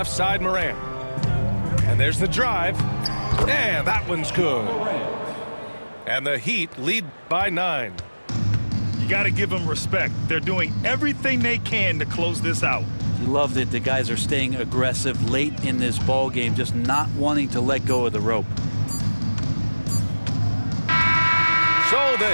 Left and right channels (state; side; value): inverted; both; correlation -1.00